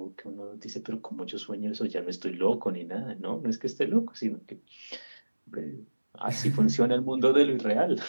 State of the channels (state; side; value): inverted; both; correlation -1.00